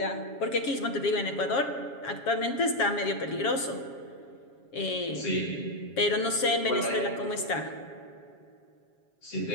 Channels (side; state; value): right; late; 7.3 ms